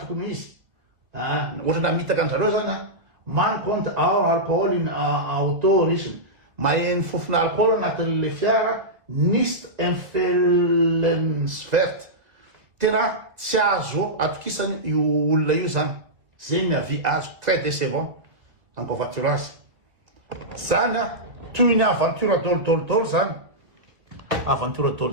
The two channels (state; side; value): late; left; 1.7 ms